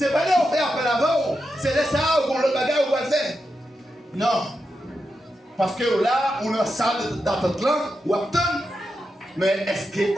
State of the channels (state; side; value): normal; both; correlation 0.88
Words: pas là qu'on fait appel avant, c'est là ça qu'on le bagage ou va le faire. Non. Parce que là, on a une salle d'attente là, ou attend. Mais est-ce